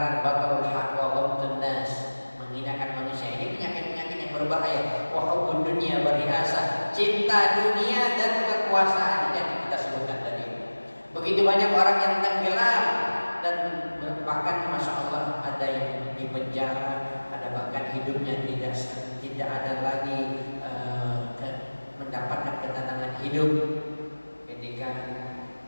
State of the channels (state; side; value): inverted; both; correlation -1.00